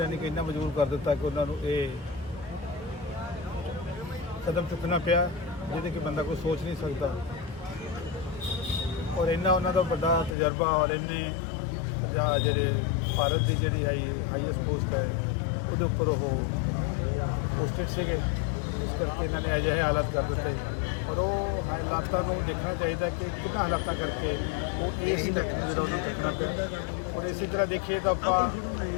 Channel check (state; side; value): drops out; right; at 10.4 s